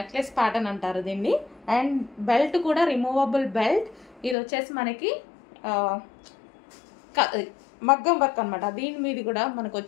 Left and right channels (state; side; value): drops out; right; at 4.4 s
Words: ప్యాటర్న్ అంటారు దీన్ని. అండ్ బెల్ట్ కూడా రిమూవబుల్ బెల్ట్. ఇది వచ్చేసి మనకి మగ్గం వర్క్ అనమాట. దీని మీద కూడా మనకు